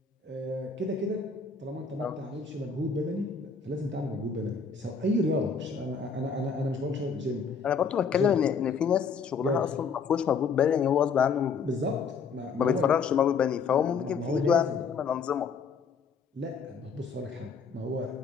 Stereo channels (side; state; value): right; quieter; 5.6 dB